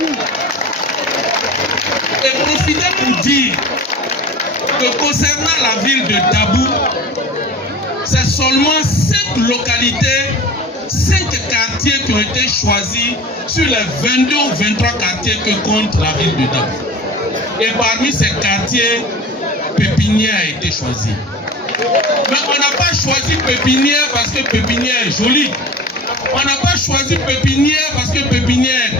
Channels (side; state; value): both; normal; correlation 0.38